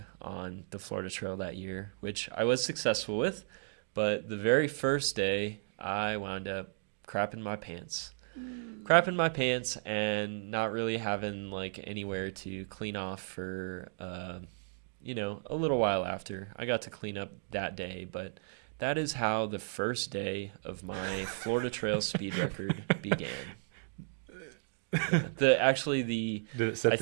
on the Florida Trail that year, which I was successful with. But the very first day, I wound up crapping my pants and not really having like anywhere to clean off for, a little while after. I got to clean up that day, but that is how the first day of my Florida Trail speed record began. Did it set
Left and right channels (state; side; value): silent; left; digital silence